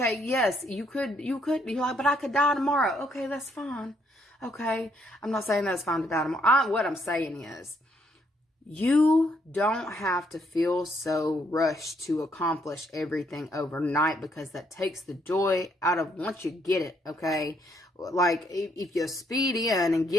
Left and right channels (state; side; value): normal; both; correlation 0.71